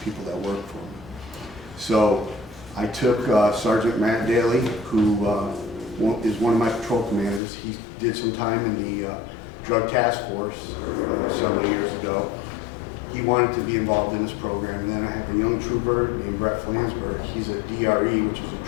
people that work for me. So I took Sergeant Matt Daly, who is one of my patrol commanders. He did some time in the drug task force several years ago. He wanted to be involved in this program. And then I have a young trooper named Brett Flansburgh. He's a DRE, which is a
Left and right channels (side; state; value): right; drops out; at 7.4 s